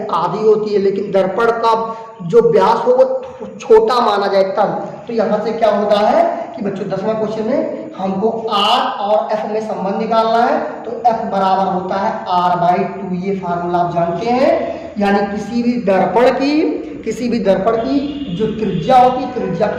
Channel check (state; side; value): identical; both; correlation 1.00